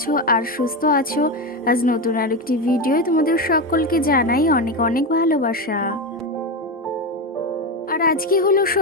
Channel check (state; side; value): normal; both; correlation 0.15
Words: আর সুস্থ আছো। আজ নতুন আরেকটি ভিডিও তোমাদের সকলকে জানাই অনেক অনেক ভালোবাসা। আর আজকে হলো